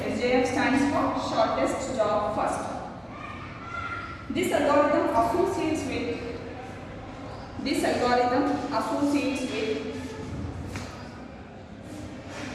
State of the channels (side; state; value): both; identical; correlation 1.00